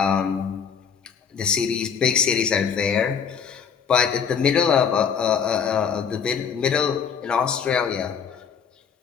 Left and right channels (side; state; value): right; quieter; 6.9 dB